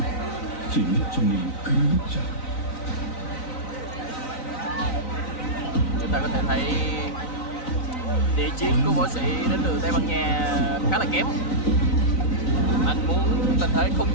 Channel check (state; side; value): late; right; 3.9 ms